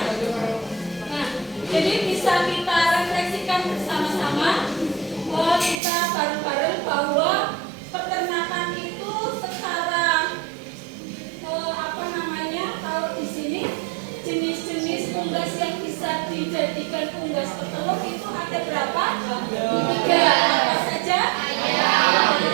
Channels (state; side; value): drops out; left; at 5.8 s